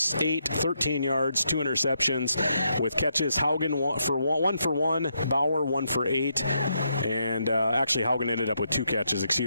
8, 13 yards, 2 interceptions with catches. Haugen 1 for 1, Bauer 1 for 8, and actually Haugen ended up with 2 catches,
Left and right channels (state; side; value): inverted; both; correlation -0.80